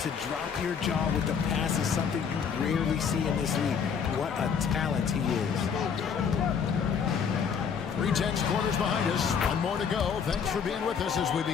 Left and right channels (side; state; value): right; quieter; 6.8 dB